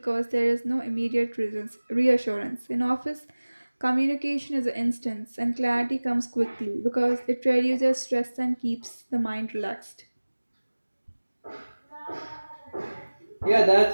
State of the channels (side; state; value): both; inverted; correlation -1.00